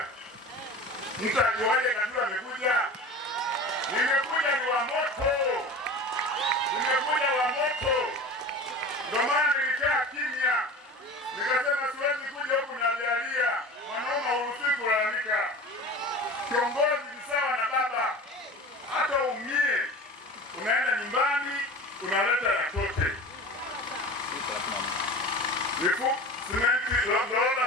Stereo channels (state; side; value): normal; both; correlation 0.35